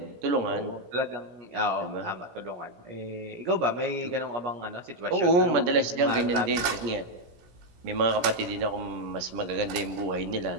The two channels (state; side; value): late; left; 17 ms